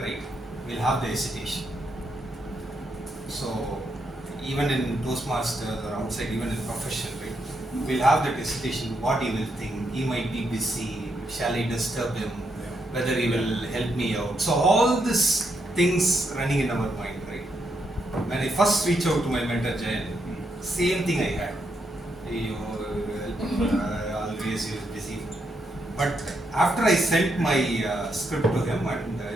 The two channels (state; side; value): normal; both; correlation 0.79